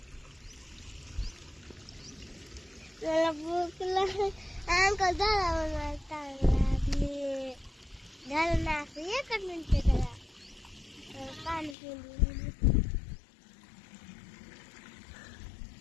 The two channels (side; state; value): right; drops out; at 11.8 s